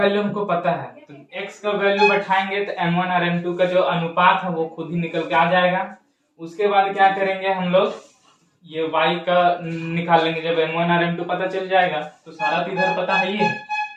हमको पता है, तो x का वैल्यू बैठाएंगे तो m1 और m2 का जो अनुपात है वो खुद ही निकल के आ जाएगा। उसके बाद क्या करेंगे हम लोग, ये y का निकाल लेंगे। जब m1 और m2 पता चल जाएगा तो सारा तो इधर पता है ही है,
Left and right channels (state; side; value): identical; both; correlation 1.00